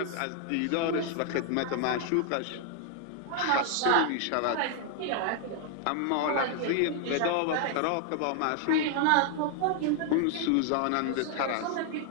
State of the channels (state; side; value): different; both; correlation 0.00